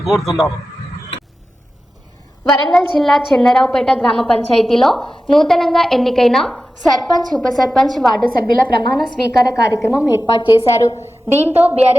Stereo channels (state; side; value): normal; both; correlation 0.94